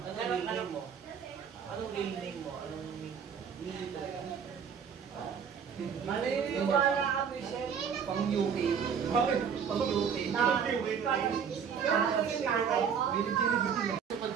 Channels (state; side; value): quieter; left; 7.1 dB